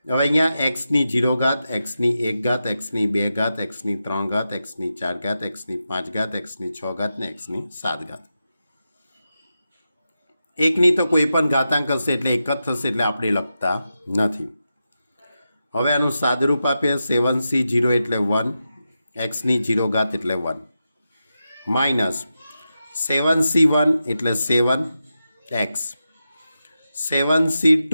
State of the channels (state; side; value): inverted; both; correlation -0.90